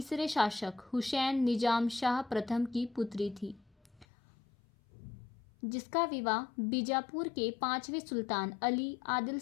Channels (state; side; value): drops out; right; at 4.0 s